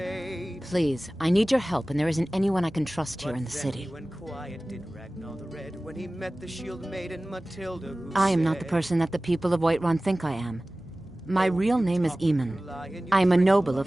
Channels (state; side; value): normal; both; correlation 0.97